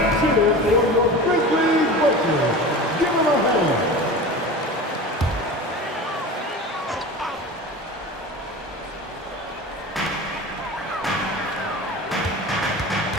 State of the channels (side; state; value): both; normal; correlation 0.33